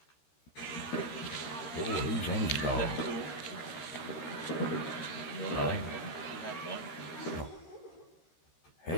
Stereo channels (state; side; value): late; right; 13 ms